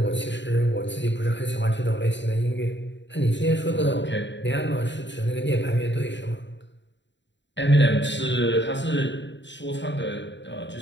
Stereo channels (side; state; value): right; late; 0.53 ms